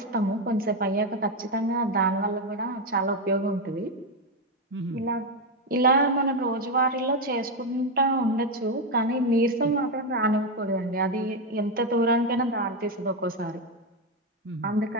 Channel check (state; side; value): normal; both; correlation 0.07